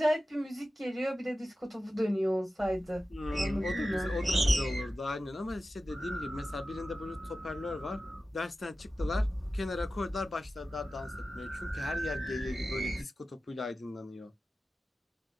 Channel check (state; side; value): normal; both; correlation 0.94